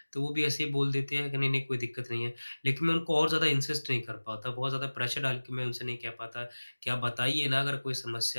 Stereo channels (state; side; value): inverted; both; correlation -1.00